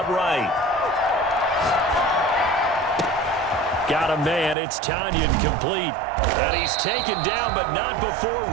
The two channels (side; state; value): left; drops out; at 4.5 s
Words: right. Got a man. It's Tonyan complete. And he's taken down, but not before